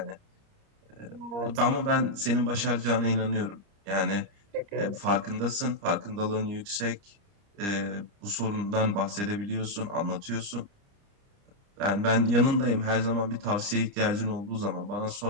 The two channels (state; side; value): late; left; 30 ms